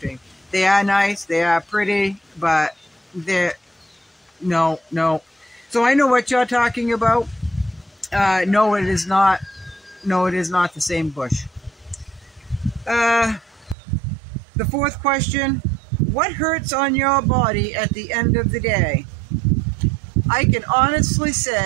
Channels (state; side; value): drops out; left; at 13.8 s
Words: They are nice, they are pretty, but they're no. So I know what you're talking about. No, it is not. No, it is not the same bush. The fourth question: what hurts on your body at the end of the day? I can honestly